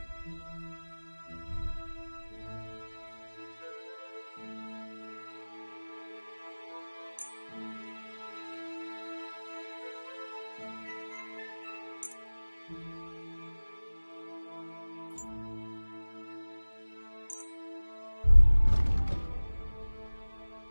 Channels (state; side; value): inverted; both; correlation -1.00